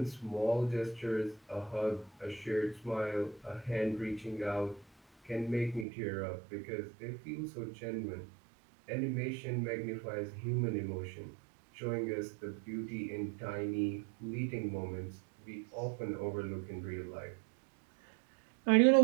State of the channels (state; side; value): drops out; left; at 5.9 s